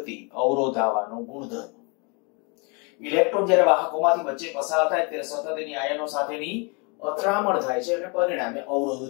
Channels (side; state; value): right; quieter; 32.4 dB